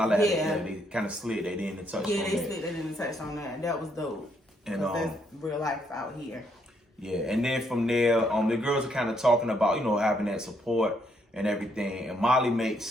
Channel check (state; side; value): normal; both; correlation 0.73